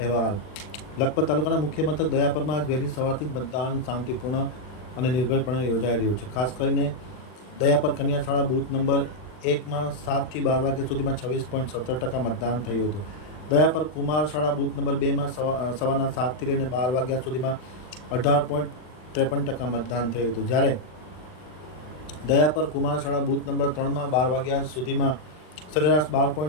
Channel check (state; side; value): late; right; 39 ms